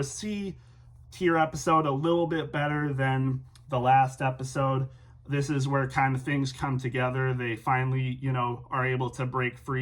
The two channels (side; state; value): both; identical; correlation 1.00